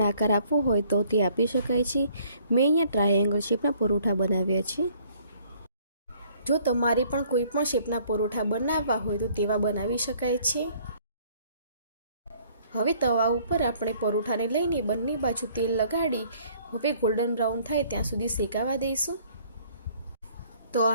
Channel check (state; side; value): inverted; both; correlation -0.60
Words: આકાર આપવો હોય તો તે આપી શકાય છે। મેં અહીંયા ટ્રાયેંગલ શેપના પરોઠા બનાવ્યા છે। જો તમારે પણ કોઈ પણ શેપના પરોઠા બનાવવા હોય તો તેવા બનાવી શકાય છે। હવે તવા ઉપર આપણે પરોઠાને લઈને બંને બાજુ તેલ લગાડી હવે ગોલ્ડન બ્રાઉન થાય ત્યાં સુધી શેકાવા દઈશું। તો